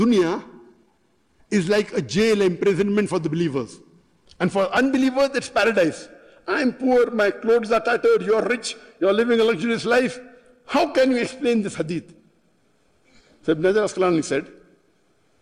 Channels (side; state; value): both; identical; correlation 1.00